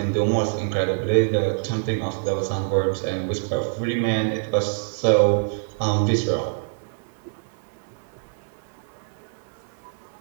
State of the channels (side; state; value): left; silent; digital silence